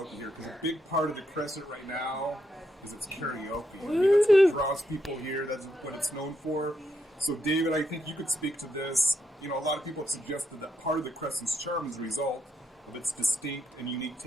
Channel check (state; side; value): normal; both; correlation 0.80